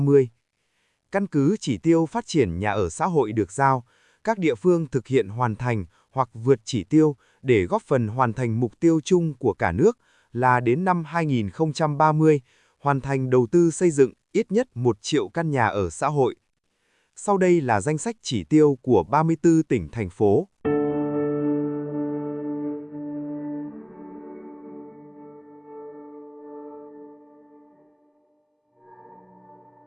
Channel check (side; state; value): both; identical; correlation 1.00